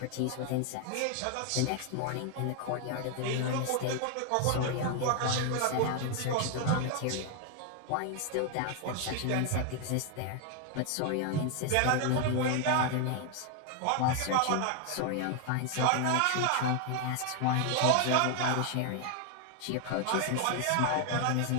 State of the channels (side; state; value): both; different; correlation 0.01